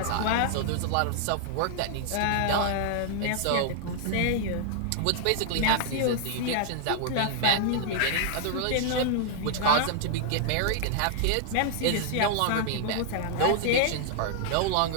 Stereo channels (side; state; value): both; different; correlation -0.01